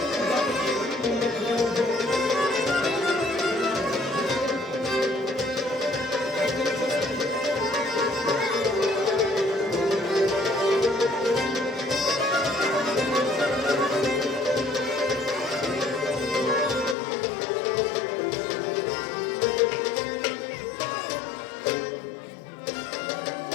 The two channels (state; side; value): drops out; right; at 16.9 s